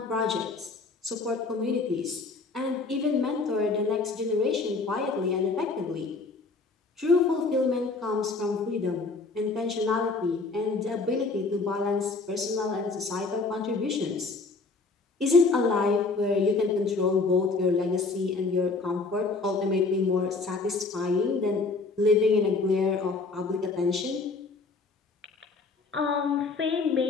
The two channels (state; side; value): quieter; right; 3.9 dB